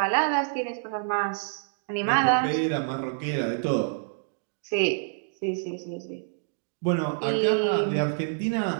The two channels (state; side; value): silent; left; digital silence